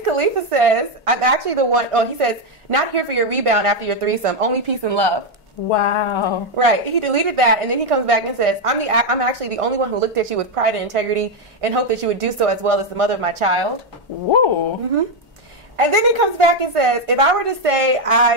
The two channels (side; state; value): both; normal; correlation 0.04